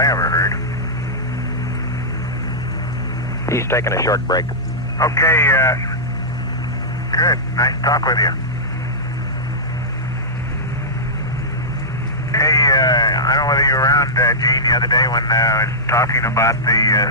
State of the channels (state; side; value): normal; both; correlation -0.13